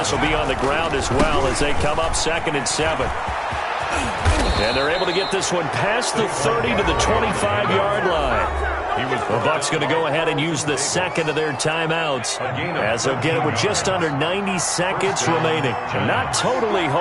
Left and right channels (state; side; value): identical; both; correlation 1.00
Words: will be on the ground as well as they come up 2nd and 7. And they're able to get this one past the 30 to the 25-yard line. The Bucs going to go ahead and use the second of their timeouts, as they'll get it with just under 90 seconds remaining. Not totally